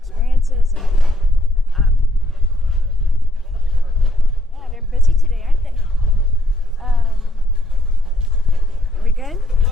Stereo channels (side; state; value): both; normal; correlation 0.70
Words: and yeah, they're busy today, aren't they? Are we good?